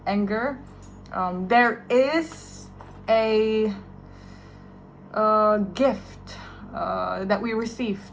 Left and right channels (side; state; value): both; identical; correlation 1.00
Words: anger. There is a gift that we